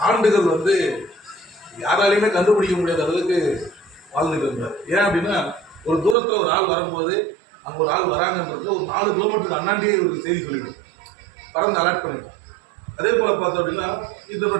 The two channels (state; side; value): drops out; left; at 6.2 s